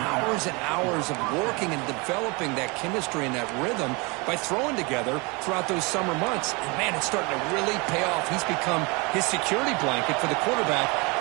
and hours of working and developing that chemistry and that rhythm by throwing together throughout those summer months. And, man, it's starting to really pay off. He's become his security blanket for the quarterback,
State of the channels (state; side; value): quieter; left; 28.1 dB